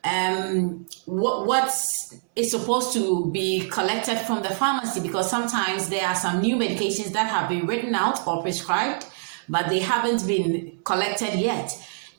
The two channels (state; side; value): silent; left; 61 dB below the other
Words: What is supposed to be collected from the pharmacy, because sometimes there are some new medications that have been written out or prescribed, but they haven't been collected yet.